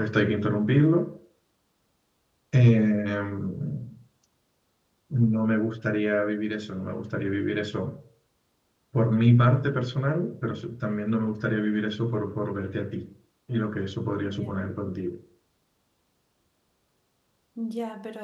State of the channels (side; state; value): both; identical; correlation 1.00